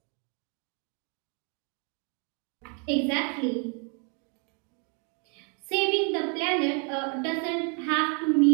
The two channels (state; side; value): quieter; left; 37.1 dB